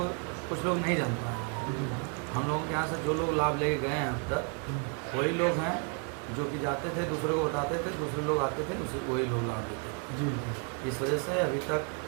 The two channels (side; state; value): left; quieter; 38.4 dB